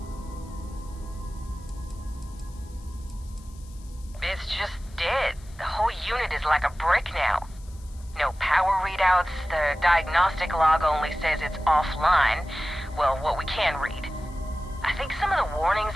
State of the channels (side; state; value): left; noise; hiss, 25 dB below the sound